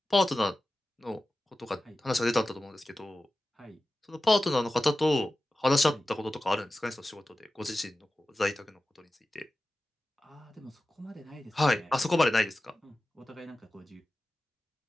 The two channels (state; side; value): normal; both; correlation 0.94